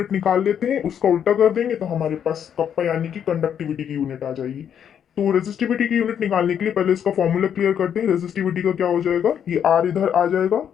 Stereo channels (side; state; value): right; quieter; 8.7 dB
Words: निकाल लेते हैं, उसका उल्टा कर देंगे तो हमारे पास कप्पा यानी कि कंडक्टिविटी की यूनिट आ जाएगी। तो रेजिस्टिविटी की यूनिट निकालने के लिए पहले इसका फॉर्मूला क्लियर करते हैं। रेजिस्टिविटी का क्या हो जाएगा, ये आर इधर आ जाएगा